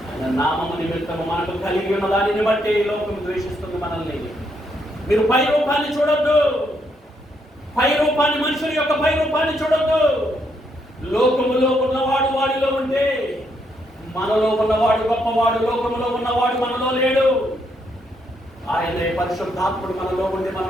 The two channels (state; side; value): normal; both; correlation 0.76